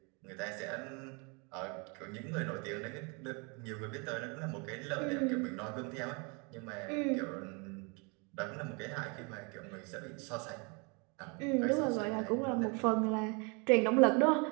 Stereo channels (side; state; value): left; quieter; 32.1 dB